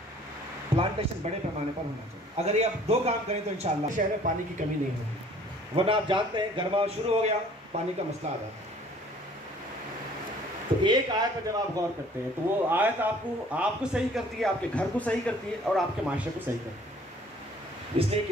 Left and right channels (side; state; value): both; normal; correlation 0.55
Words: بڑے پیمانے پر ہونا چاہیے. اگر یہ آپ 2 کام کریں تو انشاءاللہ شہر میں پانی کی کمی نہیں ہوگی. ورنہ آپ جانتے ہیں گرما شروع ہو گیا پانی کا مسئلہ آ جاتا ہے. تو ایک آیت پر جب آپ غور کرتے ہیں تو وہ آیت آپ کو صحیح کرتی ہے, آپ کے گھر کو صحیح کرتی ہے اور آپ کے معاشرے کو صحیح کرتی ہے. اس لیے